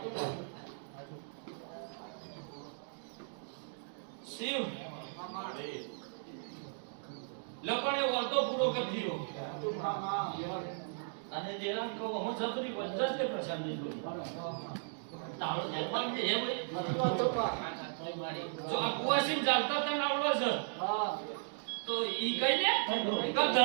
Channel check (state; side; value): silent; left; digital silence